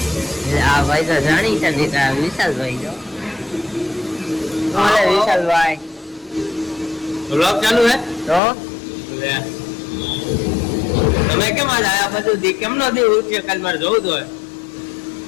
આ ભાઈ તો જાણી છે વિશાલભાઈ જો બોલે વિશાલભાઈ વ્લોગ ચાલુ હે તો લે તમે કેમ આજ આયા બધું દી કેમ નો દી ઉઠ્યો કાલ મારે જોવું તો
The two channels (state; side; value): drops out; right; at 8.4 s